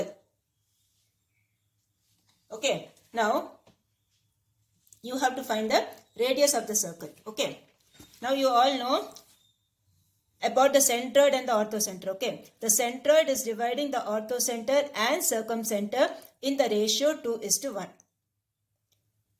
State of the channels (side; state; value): both; identical; correlation 1.00